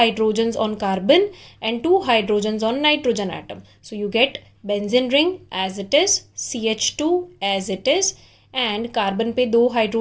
on carbon and two hydrogens on nitrogen atom. So you get benzene ring as it is, CH2 as it is, and carbon पे दो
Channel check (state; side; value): identical; both; correlation 1.00